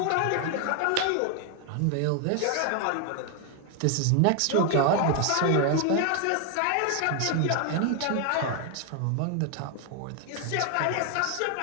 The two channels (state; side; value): different; both; correlation 0.00